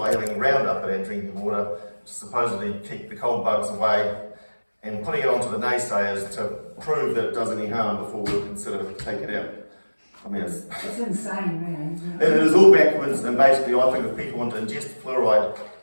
having Roundup in our drinking water to supposedly keep the cold bugs away, and putting it onto the naysayers to prove that it does any harm before we'll consider taking it out. I mean, It's insane, really, isn't it? it is all backwards, and basically I think if people want to ingest fluoride,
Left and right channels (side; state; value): both; inverted; correlation -1.00